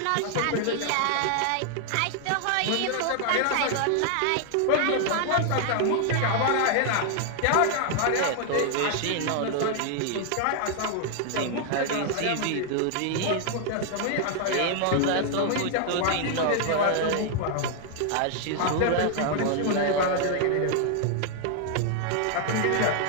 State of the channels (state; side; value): different; both; correlation 0.00